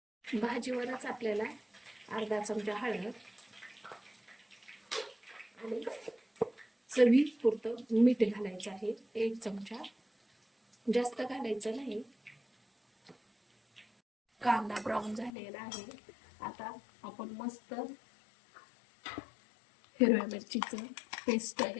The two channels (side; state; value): right; drops out; at 15.3 s